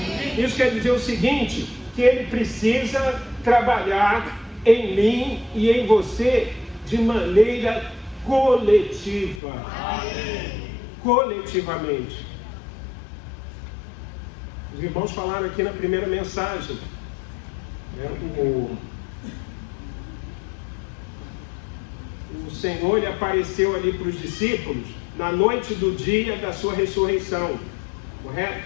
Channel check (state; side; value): drops out; right; at 9.4 s